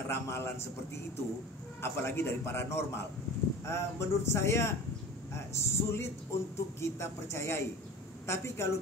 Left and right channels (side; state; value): both; normal; correlation 0.37